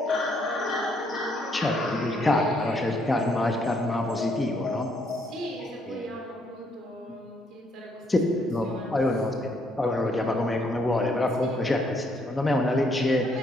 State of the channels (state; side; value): normal; both; correlation 0.70